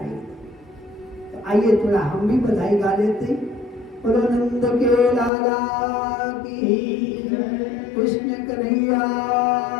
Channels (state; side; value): drops out; right; at 5.3 s